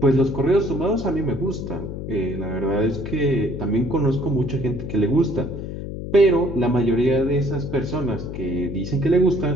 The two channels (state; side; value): noise; left; hum, 7 dB below the sound